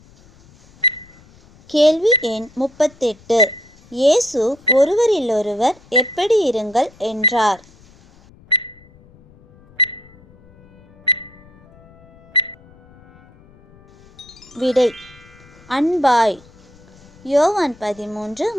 கேள்வி எண் 38. இயேசு ஒருவரிலொருவர் எப்படி இருங்கள் என்றார்? விடை அன்பாய். யோவான்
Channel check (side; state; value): left; noise; rumble, 26 dB below the sound